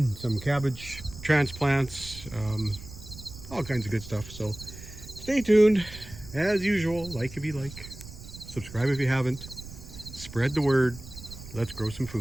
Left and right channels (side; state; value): right; noise; rumble, 14 dB below the sound